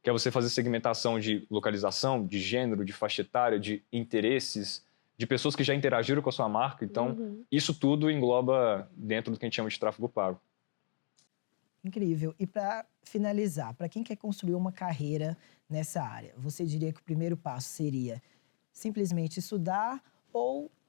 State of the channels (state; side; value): silent; right; digital silence